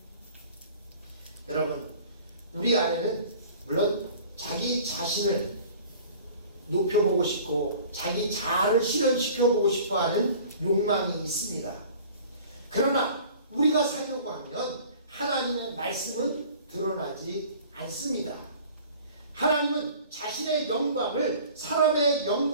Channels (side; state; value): both; inverted; correlation -0.47